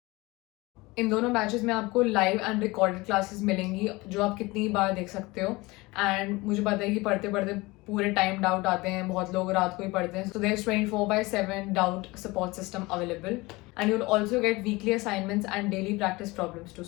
इन दोनों बैचेस में आपको लाइव एंड रिकॉर्डेड क्लासेस मिलेंगी जो आप कितनी बार देख सकते हो. एंड मुझे पता है कि पढ़ते पढ़ते पूरे टाइम डाउट आते हैं, बहुत लोग रात को ही पढ़ते हैं. So there is 24/7 doubt support system available. And you will also get weekly assignments and daily practice problems to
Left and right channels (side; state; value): right; quieter; 22.4 dB